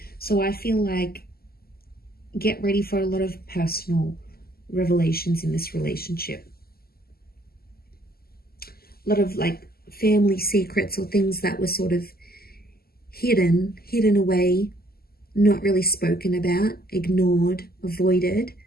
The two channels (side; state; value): right; late; 0.45 ms